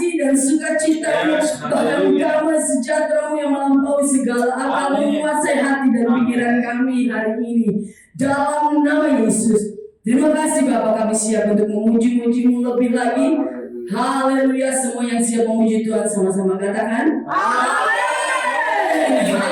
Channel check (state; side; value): identical; both; correlation 1.00